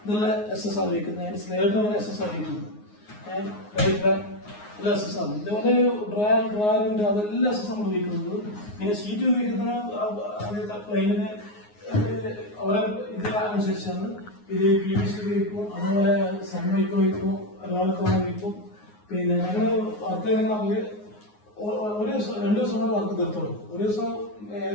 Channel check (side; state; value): right; late; 9.6 ms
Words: ഇതെല്ലാം SS ആണ് വയ്ക്കുന്നത്. സ്ലൈഡർ SS ആണ് വയ്ക്കുന്നത്. എല്ലാം SS ആണ്. ഇതുപോലെ ഡ്രയറുണ്ട്, അതെല്ലാം SS നമ്മൾ ഉപയോഗിക്കുന്നത്. പിന്നെ ഷീറ്റ് ഉപയോഗിക്കുന്ന പ്ലെയിനിന് അവരെ ഇതിനനുസരിച്ചാണ്. ഇത് PVC ഉപയോഗിക്കും, അതുപോലെ സൺമൈക്ക് വയ്ക്കും, ഒരാൾക്ക് വയ്ക്കും. പിന്നെ ഞങ്ങൾ വർക്ക് ചെയ്യുന്ന ഒരു ദിവസം 2 ദിവസം കൊണ്ട് വർക്ക് തീർത്തോളൂ. ഒരു ദിവസം